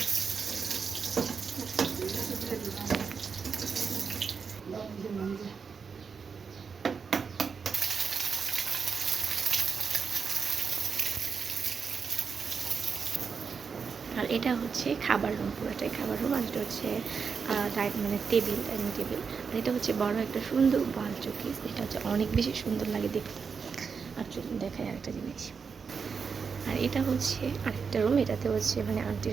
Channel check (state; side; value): quieter; left; 5.8 dB